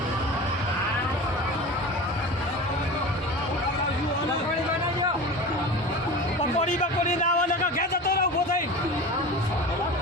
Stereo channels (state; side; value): normal; both; correlation 0.33